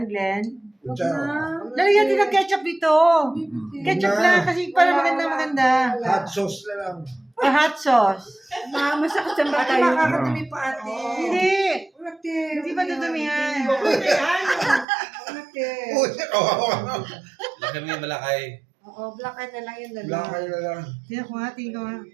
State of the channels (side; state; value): left; drops out; at 14.9 s